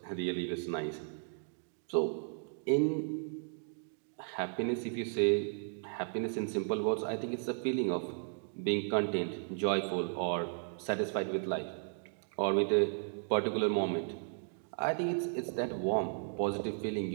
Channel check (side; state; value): left; silent; digital silence